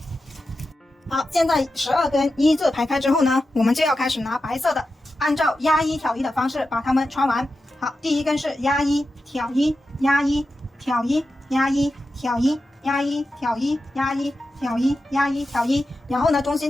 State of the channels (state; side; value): normal; both; correlation 0.91